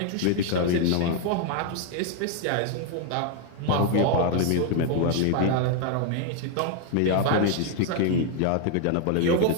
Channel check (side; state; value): both; different; correlation 0.00